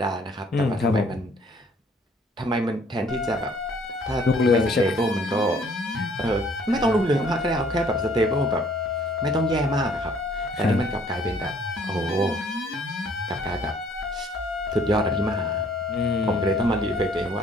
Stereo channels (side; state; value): both; normal; correlation 0.60